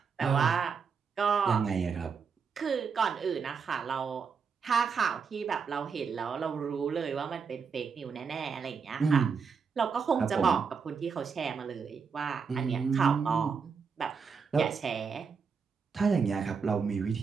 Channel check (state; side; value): quieter; left; 5.8 dB